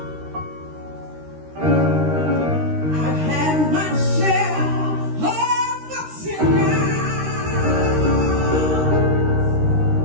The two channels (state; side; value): late; left; 13 ms